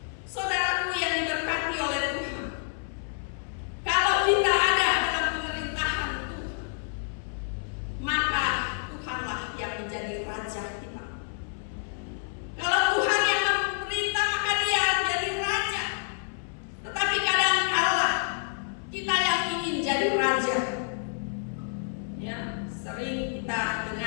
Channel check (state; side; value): silent; right; 59 dB below the other